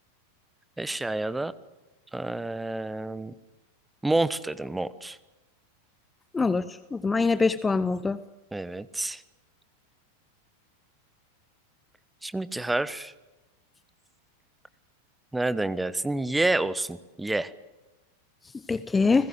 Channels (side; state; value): both; normal; correlation 0.92